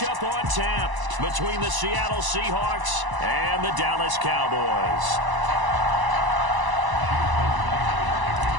on tap between the Seattle Seahawks and the Dallas Cowboys.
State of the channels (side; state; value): left; late; 1.0 ms